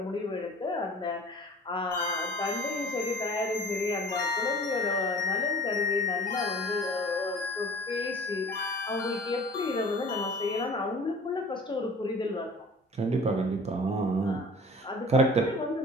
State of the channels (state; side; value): normal; both; correlation 0.45